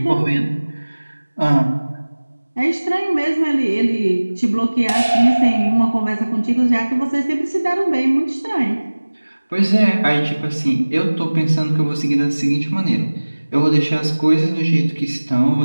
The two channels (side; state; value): both; inverted; correlation -1.00